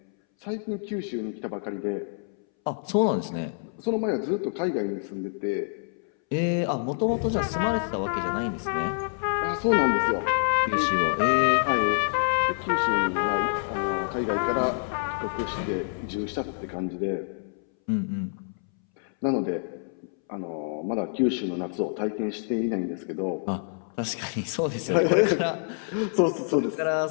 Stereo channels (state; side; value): silent; right; 60 dB below the other